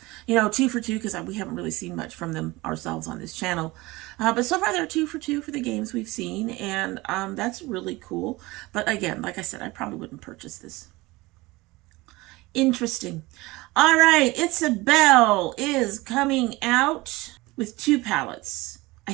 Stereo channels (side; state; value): left; quieter; 21.4 dB